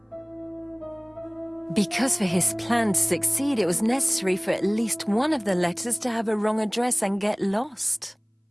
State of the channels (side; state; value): both; identical; correlation 1.00